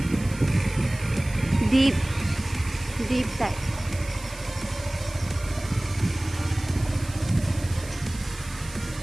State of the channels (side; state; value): right; noise; hiss, 17 dB below the sound